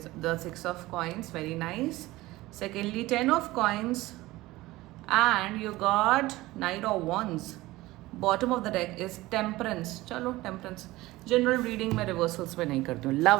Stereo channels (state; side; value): quieter; left; 18.6 dB